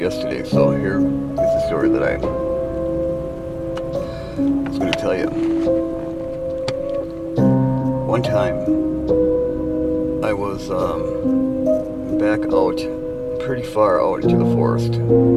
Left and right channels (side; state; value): both; identical; correlation 1.00